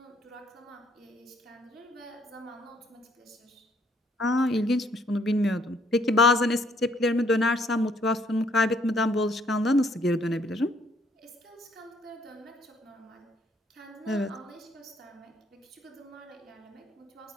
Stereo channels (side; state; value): both; normal; correlation 0.65